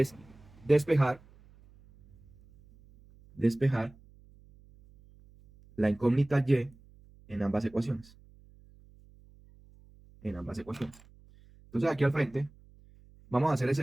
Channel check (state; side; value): noise; right; hum, 26 dB below the sound